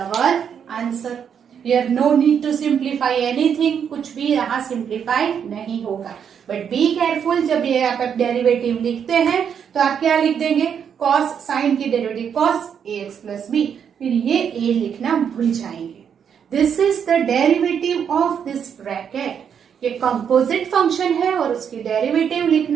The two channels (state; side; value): quieter; left; 7.8 dB